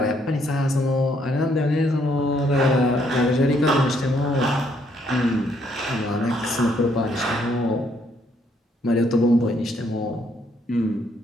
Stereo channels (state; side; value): normal; both; correlation 0.70